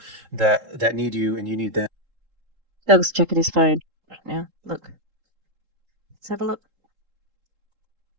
that need you and you need them. Doug's checking his phone right now. Look, let's have a look.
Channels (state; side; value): late; left; 3.7 ms